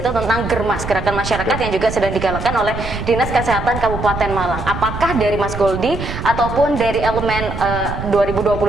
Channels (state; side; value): noise; right; rumble, 7 dB below the sound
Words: tentang Germas, gerakan masyarakat yang juga sedang digalakan oleh Dinas Kesehatan Kabupaten Malang. Apakah dari Mas Goldi ataupun dari Elemen